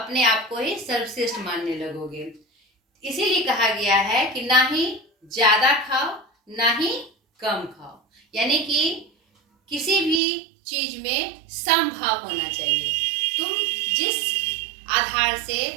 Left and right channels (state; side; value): drops out; left; at 10.2 s